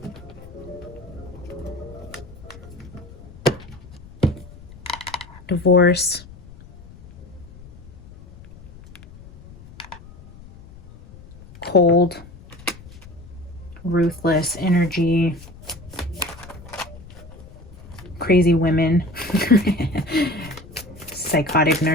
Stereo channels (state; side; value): noise; left; rumble, 19 dB below the sound